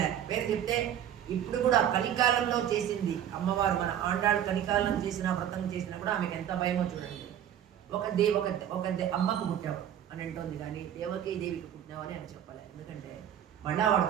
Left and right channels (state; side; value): quieter; left; 10.3 dB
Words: పేరు చెప్తే ఇప్పుడు కూడా కలికాలంలో చేసింది అమ్మవారు, మన ఆండాళ్ళు కలికాలం చేసిన వ్రతం చేసినా కూడా ఆమెకు ఎంత భయమో చూడండి. ఒక అమ్మకు పుట్టావు అని అంటోంది, కానీ దేవకీదేవికి పుట్టినావు అని ఆమె చెప్పలే. ఎందుకంటే మళ్ళా వాడు